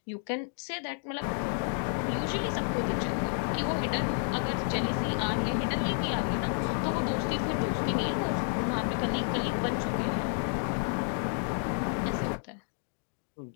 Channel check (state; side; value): silent; right; 57 dB below the other